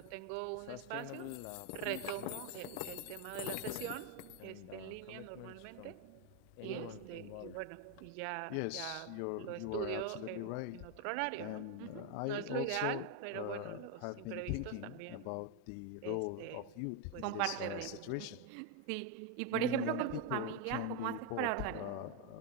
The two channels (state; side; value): different; both; correlation 0.02